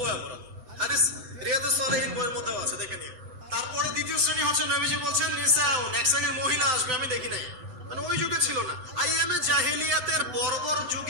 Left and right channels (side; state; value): left; late; 8.0 ms